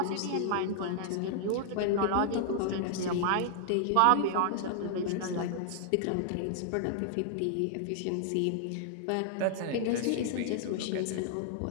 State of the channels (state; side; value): different; both; correlation -0.01